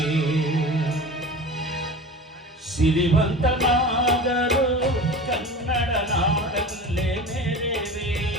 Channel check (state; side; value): normal; both; correlation 0.34